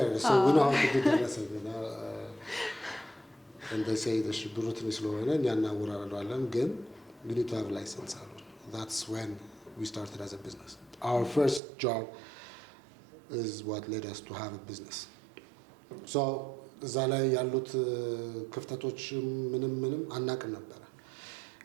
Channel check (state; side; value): drops out; left; at 11.6 s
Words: so we know how to do ደረሰኝ and they say the ብሩ ትንሽ ስለሆነ እኛ እናወራረደዋለን ግን we need to have license አሉን that's when we started as a business our first job is what led us to have a business so እዛ ላይ ያሉት ክፍተቶች ምንም አናቅም ነበር